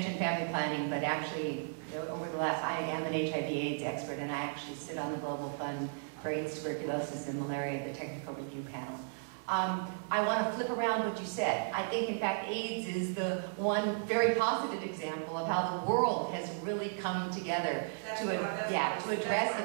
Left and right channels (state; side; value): silent; left; 55 dB below the other